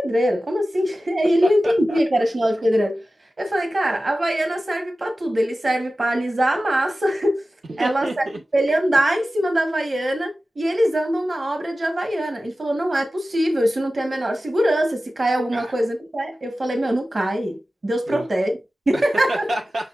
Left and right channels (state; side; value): normal; both; correlation 0.95